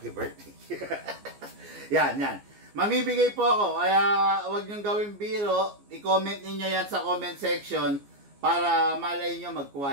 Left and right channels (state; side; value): late; left; 14 ms